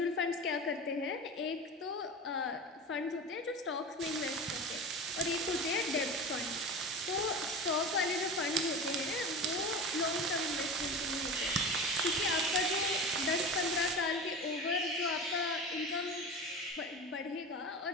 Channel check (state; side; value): normal; both; correlation 0.30